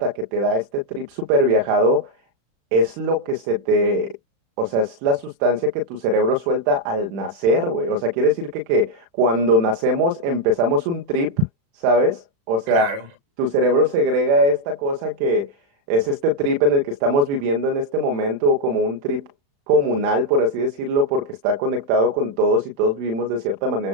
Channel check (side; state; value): left; late; 35 ms